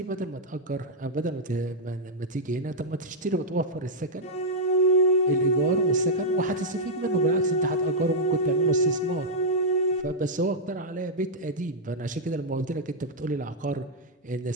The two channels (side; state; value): both; normal; correlation -0.07